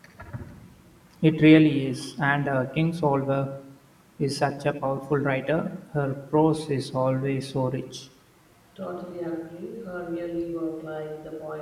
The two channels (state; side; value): identical; both; correlation 1.00